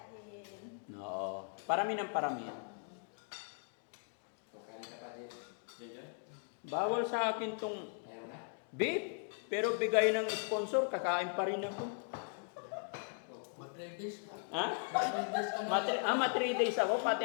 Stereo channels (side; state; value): right; silent; 52 dB below the other